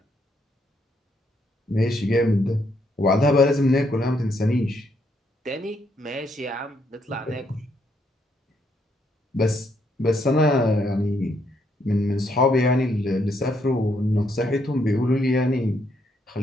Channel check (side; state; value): both; normal; correlation 0.74